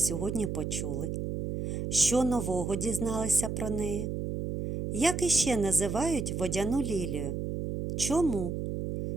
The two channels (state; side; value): noise; right; hum, 3 dB below the sound